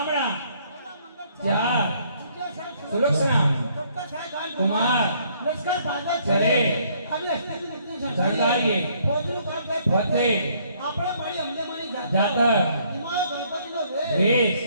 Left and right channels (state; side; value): inverted; both; correlation -0.65